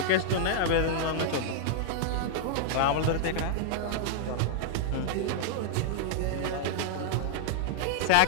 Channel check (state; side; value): different; both; correlation -0.01